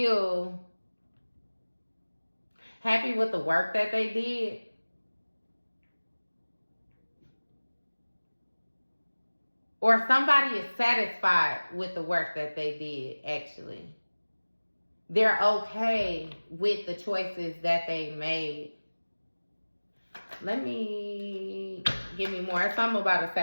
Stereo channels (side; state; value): both; inverted; correlation -1.00